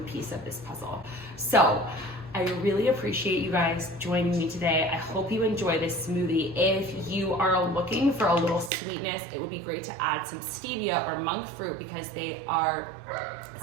piece of this puzzle. So I really appreciate you guys joining me today. I hope you enjoy this smoothie. If you are looking for a little sweetness, it would be great to add some stevia or monk fruit, because they are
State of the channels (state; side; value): drops out; left; at 8.7 s